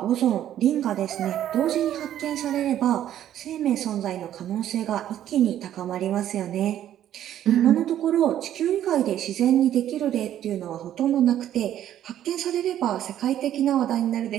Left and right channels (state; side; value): quieter; left; 11.4 dB